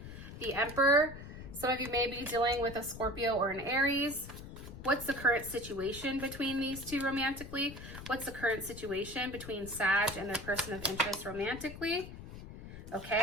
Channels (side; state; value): left; noise; rumble, 12 dB below the sound